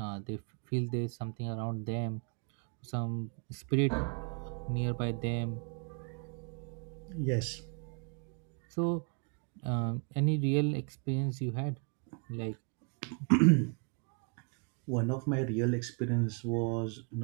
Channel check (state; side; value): quieter; left; 37.2 dB